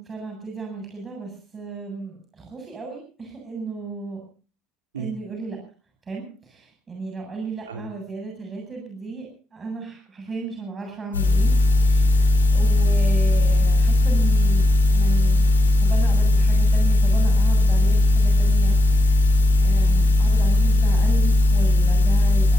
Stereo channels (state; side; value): normal; both; correlation 0.86